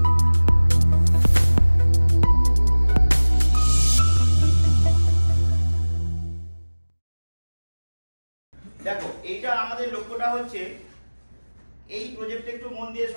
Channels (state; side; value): inverted; both; correlation -1.00